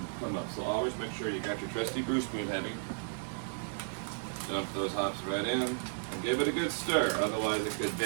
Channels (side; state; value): left; silent; digital silence